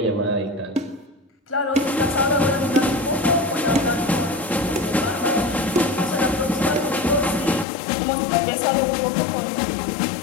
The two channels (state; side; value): drops out; right; at 7.7 s